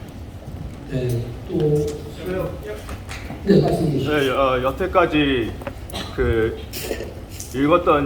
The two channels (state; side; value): identical; both; correlation 1.00